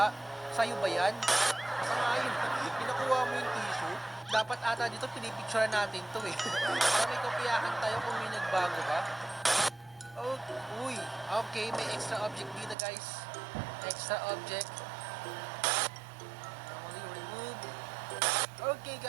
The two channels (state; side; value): drops out; left; at 12.8 s